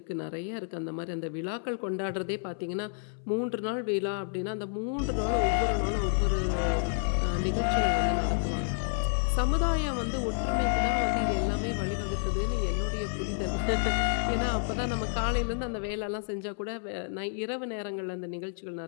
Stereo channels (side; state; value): right; silent; 58 dB below the other